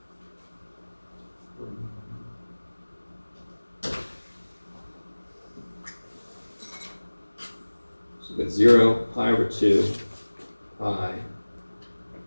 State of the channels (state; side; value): inverted; both; correlation -1.00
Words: So we've got 0, pi over 2, pi,